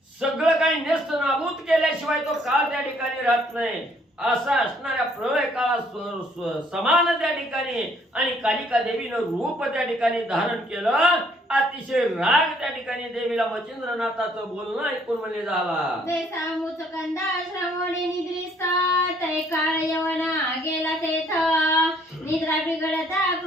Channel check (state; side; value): normal; both; correlation 0.64